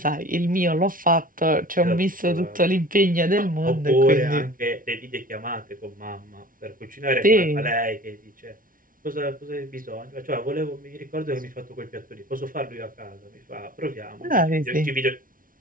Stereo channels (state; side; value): late; left; 0.40 ms